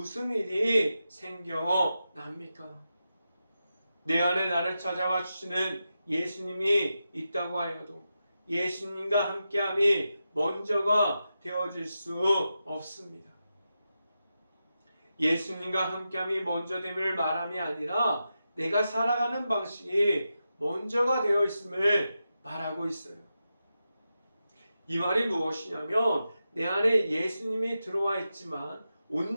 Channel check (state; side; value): inverted; both; correlation -0.90